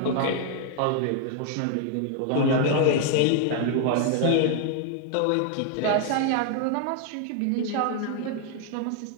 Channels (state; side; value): different; both; correlation 0.00